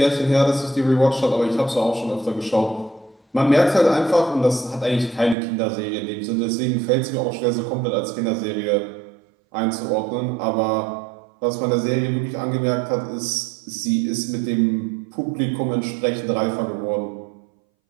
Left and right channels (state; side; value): drops out; left; at 5.4 s